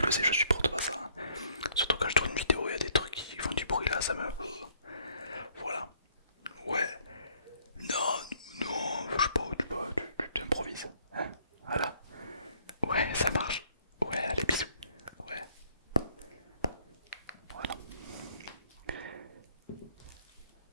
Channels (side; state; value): both; inverted; correlation -0.64